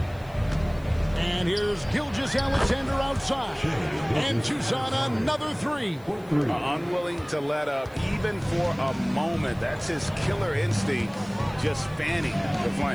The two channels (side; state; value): left; noise; hiss, 27 dB below the sound